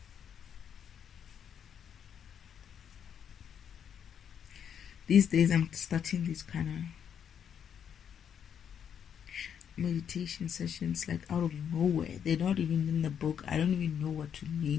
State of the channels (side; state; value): right; quieter; 8.3 dB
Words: These days I'm starting these kind of meditation sessions like out of nowhere. They're not even in the book. I don't even know what to